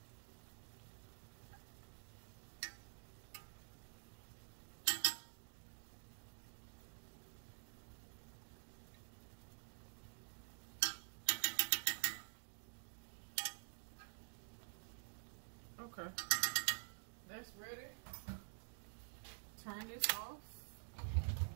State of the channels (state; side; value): silent; left; digital silence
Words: Okay. That's ready. Turn this off.